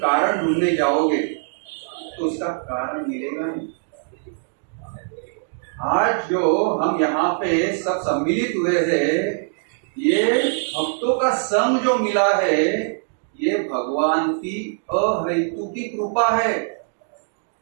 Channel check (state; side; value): silent; left; digital silence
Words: ढूंढने जाओगे तो उसका कारण मिलेगा नहीं। आज जो हम यहाँ पे सब सम्मिलित हुए हैं, ये भक्तों का संग जो मिला है, ये भगवान की अहेतुकी कृपा है।